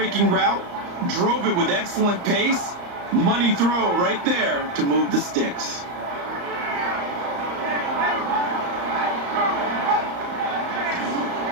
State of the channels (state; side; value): late; left; 34 ms